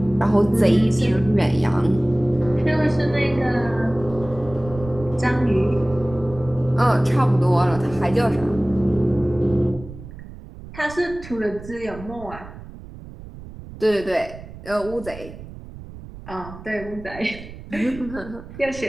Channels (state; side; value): noise; right; rumble, 15 dB below the sound